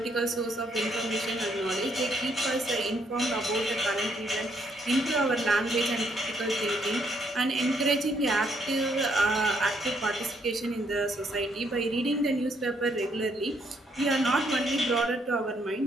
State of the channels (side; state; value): both; normal; correlation 0.71